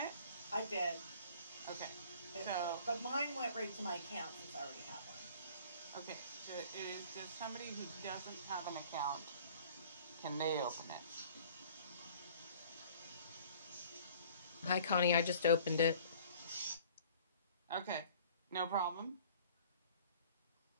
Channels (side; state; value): both; inverted; correlation -0.50